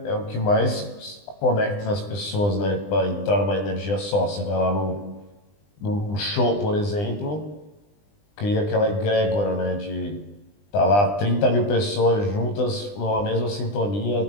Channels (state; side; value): late; right; 20 ms